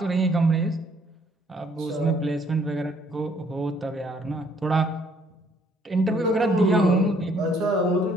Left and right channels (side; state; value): both; normal; correlation 0.64